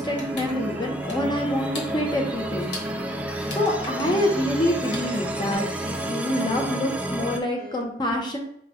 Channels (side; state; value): both; normal; correlation 0.62